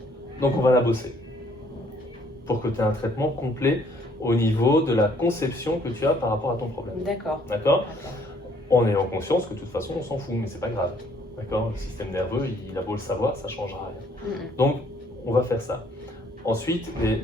Donc on va la bosser pour que tu aies un traitement complet au niveau de la conception que tu as par rapport à ton problème. D'accord. D'accord. En ayant conscience que de toute façon, on s'en fout, mais c'est pas grave. D'accord. Le système nerveux, il a beau le savoir, ça ne changera rien. Donc, on va faire ça. Ensuite,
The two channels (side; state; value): both; normal; correlation 0.63